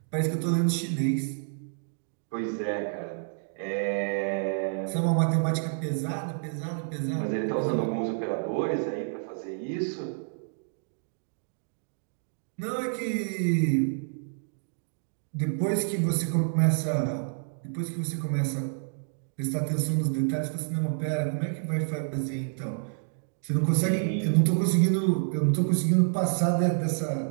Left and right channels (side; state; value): left; silent; digital silence